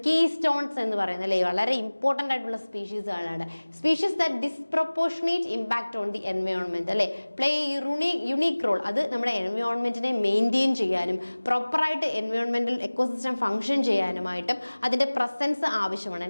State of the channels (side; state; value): both; inverted; correlation -1.00